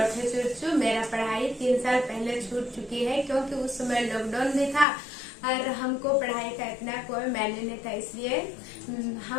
चुरचू। मेरा पढ़ाई 3 साल पहले छूट चुकी है क्योंकि उस समय लॉकडाउन भी था और हमको पढ़ाई का इतना कोई मायने नहीं था, इसलिए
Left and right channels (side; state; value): right; drops out; at 4.9 s